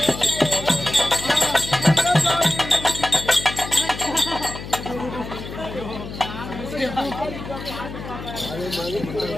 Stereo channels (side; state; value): left; noise; hum, 10 dB below the sound